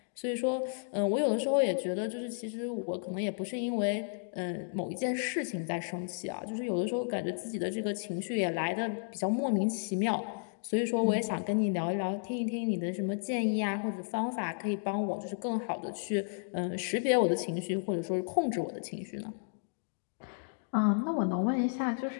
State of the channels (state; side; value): silent; right; digital silence